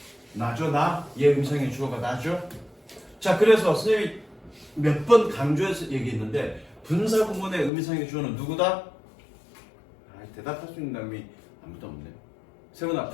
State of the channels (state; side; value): drops out; right; at 7.7 s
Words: 나죠, 나? 얘 음성의 주어가 나죠? 자, 그래서 선생님이 몇 번 강조해서 얘기했는데 분사구문의 음성의 주어는 누구다? 대답할 수 있는 사람이 아무도 없네. 세훈아,